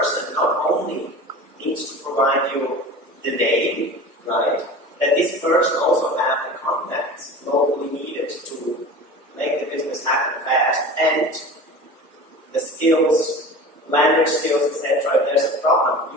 not only needs to provide you the name, right? That this person also have the contacts locally needed to make the business happen fast, and the skills, language skills, etc. If there's a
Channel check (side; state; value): both; normal; correlation 0.36